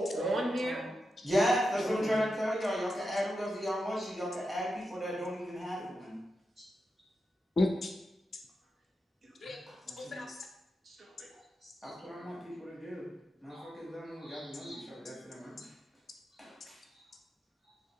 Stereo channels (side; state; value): both; normal; correlation 0.88